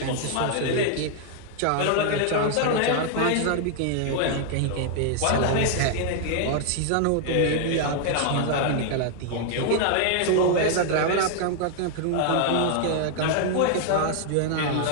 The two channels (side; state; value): both; different; correlation 0.00